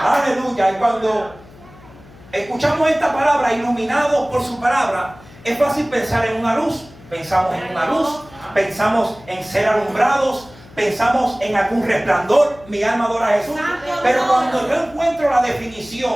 Aleluya. Y cuando escuchamos esta palabra, iluminados por su palabra, es fácil pensar en una luz. Pensamos en una luz, pensamos en ser alumbrados, pensamos en algún resplandor, mi alma adora a Jesús. Pero cuando yo encuentro la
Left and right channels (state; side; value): noise; left; hum, 22 dB below the sound